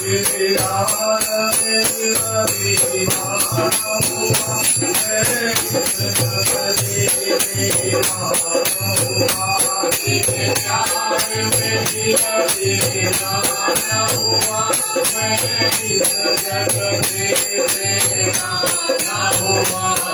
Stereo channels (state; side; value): identical; both; correlation 1.00